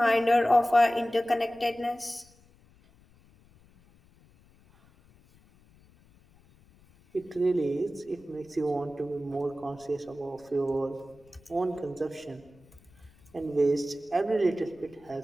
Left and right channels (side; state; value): left; noise; rumble, 29 dB below the sound